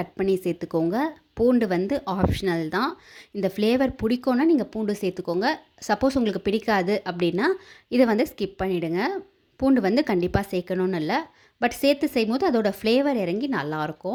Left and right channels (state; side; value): identical; both; correlation 1.00